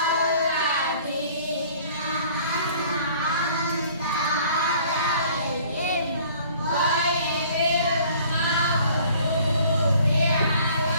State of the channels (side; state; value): both; inverted; correlation -0.53